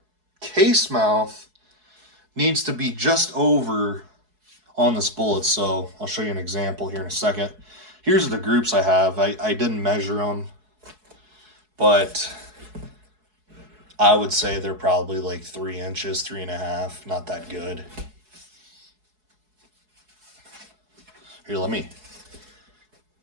case mouth needs to be just over on this bullet. So I'll show you an example here in a second. Here's the groups I have. I didn't measure them, but I would say they're probably like 3 inches, 3.5, not that good. Here, let me.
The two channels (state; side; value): late; left; 4.7 ms